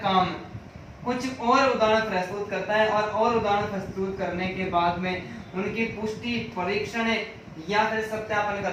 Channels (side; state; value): both; identical; correlation 1.00